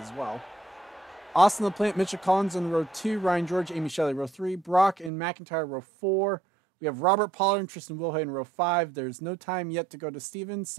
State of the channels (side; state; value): left; drops out; at 5.1 s